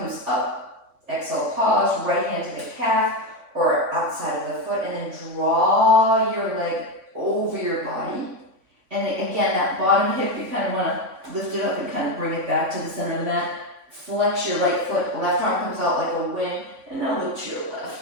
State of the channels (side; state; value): left; late; 3.6 ms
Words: up. Exhale, pause. Right hand to the calf or outside of the foot, and then draw your leg over your body. And again, that bottom hip, you kind of want to lift it up and kind of bring it back to the center of the mat. Flex your right foot. Left arm comes out like a wing, and now look to your